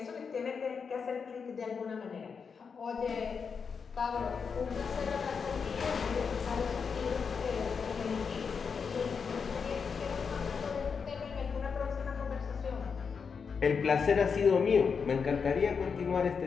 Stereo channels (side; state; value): right; quieter; 5.8 dB